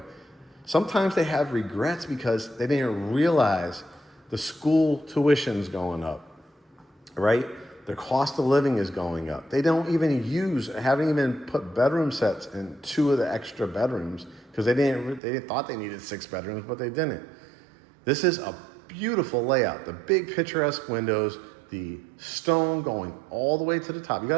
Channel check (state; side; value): drops out; left; at 15.2 s